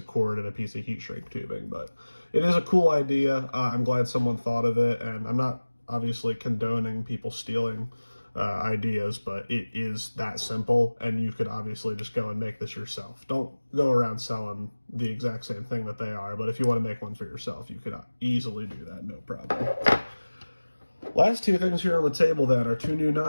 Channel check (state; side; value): inverted; both; correlation -1.00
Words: cord, and a piece of heat shrink tubing. But it is a cool idea. I'm glad someone thought of it, and I'm not obviously condoning people stealing ideas, but it is that simple, and you could obviously just go and make this yourself. Don't go around selling the exact same thing that they are, but if you want to make one for yourself, you could easily do that, no problem. Last two things here on the table then are two new